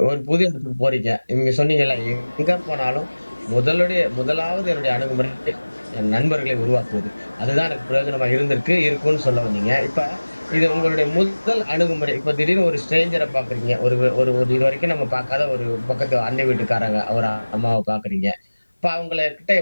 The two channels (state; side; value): inverted; both; correlation -1.00